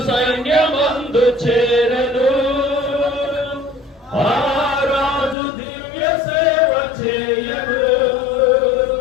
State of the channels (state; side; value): drops out; right; at 5.4 s